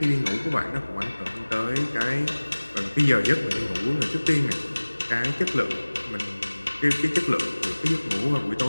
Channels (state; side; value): inverted; both; correlation -1.00